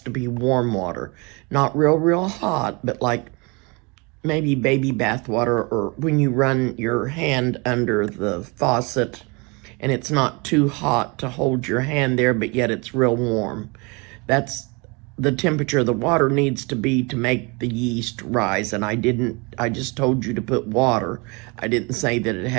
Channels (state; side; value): quieter; left; 28.9 dB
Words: to be warm water. Not real hot, but like maybe baby bath water, or when you run your hand under the faucet and it's not too hot to hold your hand there, but yet it's real warm. That's the temperature the water needs to be to make the yeast rise. And I just told you to put water. I didn't say that it